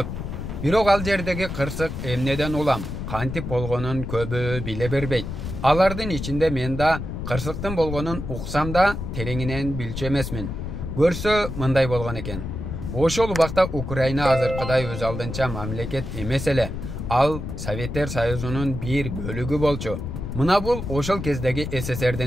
Бирок ал жердеги кырсык эмнеден улам, кантип болгонун көбү биле бербейт. Алардын ичинде мен да кырсыктын болгонун уксам да тереңинен билчү эмесмин. Көрсө мындай болгон экен. Ошол убакта Украина азыркыдай өз алдынча мамлекет эмес эле. Ал Советтер Союзунун бир бөлүгү болчу. Мына бул ошол кездеги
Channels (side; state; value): left; noise; rumble, 6 dB below the sound